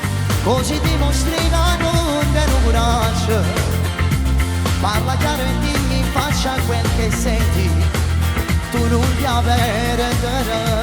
così dimostri che non te lo coraggio. Parla chiaro e dimmi in faccia quel che senti, tu non ti avere.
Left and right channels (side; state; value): both; identical; correlation 1.00